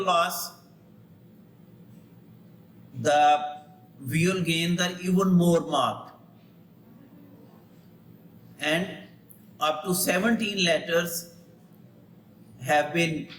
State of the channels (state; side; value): identical; both; correlation 1.00